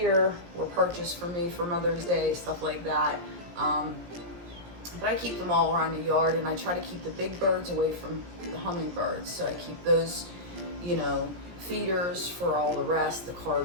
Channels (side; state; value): left; late; 17 ms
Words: were purchased for me for Mother's Day, stuff like that. But I keep them all around the yard, and I try to keep the big birds away from the hummingbirds. So I keep those, feeders for all the rest, the